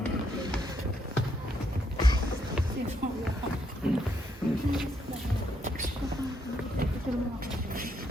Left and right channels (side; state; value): both; normal; correlation 0.75